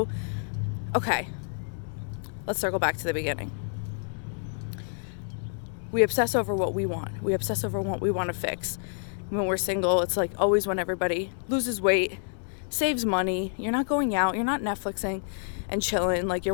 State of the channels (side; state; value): right; silent; digital silence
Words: okay, let's circle back to the beginning. We obsess over what we want. We obsess over what we want to fix. When we're single, it's like always when everybody loses weight, saves money, you're not going out, you're not Netflixing and chilling, like